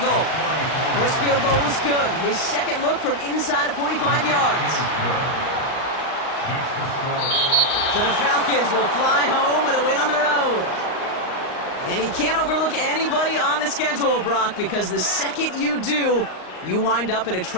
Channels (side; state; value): right; late; 38 ms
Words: First field goal was good. His second look from inside of 45 yards. So the Falcons will fly home with a win on the road. And he can't overlook anybody on the schedule, Brock, because the second you do, you wind up in a